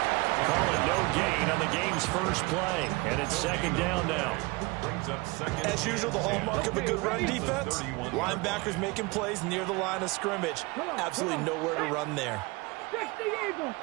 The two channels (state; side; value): quieter; left; 24.9 dB